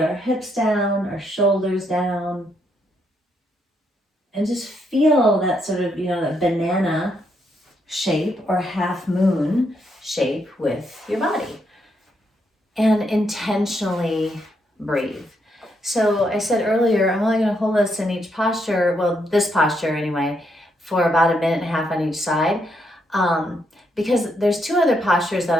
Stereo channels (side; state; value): both; normal; correlation 0.77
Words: our hips down, our shoulders down, and just feel that sort of, that banana shape or half moon shape with your body. And intentionally breathe. So I said earlier, I'm only going to hold us in each posture, well, this posture anyway, for about 1.5 minutes on each side. Because there's 2 other postures that